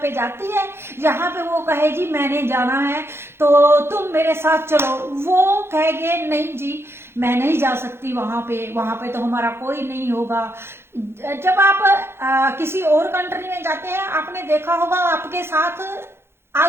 पे जाती है जहां पे वो कहे जी मैंने जाना है तो तुम मेरे साथ चलो, वो कहेगे नहीं जी मैं नहीं जा सकती वहां पे तो हमारा कोई नहीं होगा। जब आप किसी और कंट्री में जाते हैं, आपने देखा होगा आपके साथ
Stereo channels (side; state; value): left; late; 0.12 ms